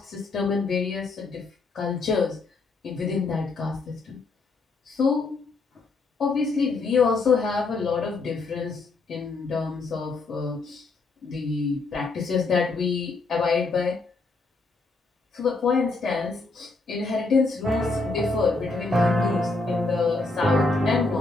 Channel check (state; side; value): quieter; right; 3.7 dB